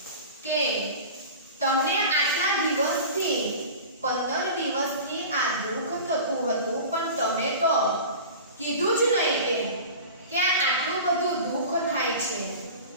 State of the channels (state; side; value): inverted; both; correlation -0.35